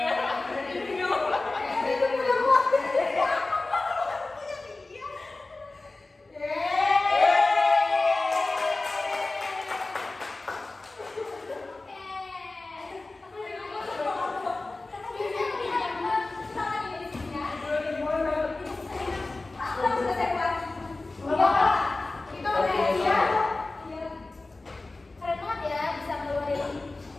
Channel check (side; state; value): right; quieter; 3.2 dB